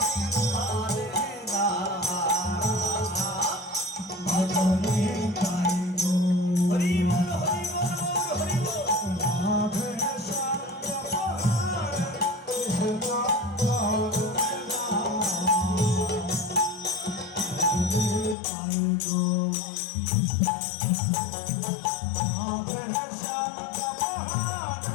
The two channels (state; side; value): drops out; right; at 18.4 s